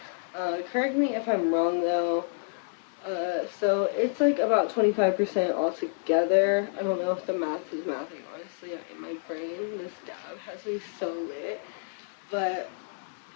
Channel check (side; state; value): right; silent; digital silence